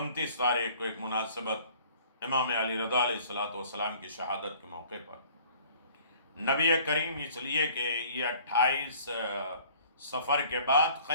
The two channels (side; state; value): both; inverted; correlation -0.53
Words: تاریخ کو ایک مناسبت امام علی رضا علیہ السلام کی شہادت کے موقع پر نبی کریم، اس لیے کہ یہ 28 سفر کے بعد